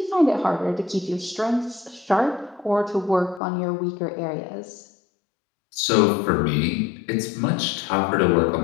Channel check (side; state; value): right; drops out; at 3.4 s